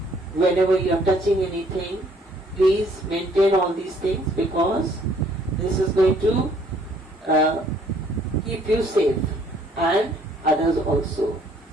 whenever you're touching anything, please maintain all these things because this is going to keep you safe and others also.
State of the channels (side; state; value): both; normal; correlation 0.62